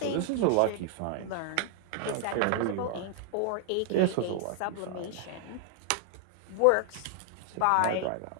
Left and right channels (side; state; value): both; different; correlation 0.00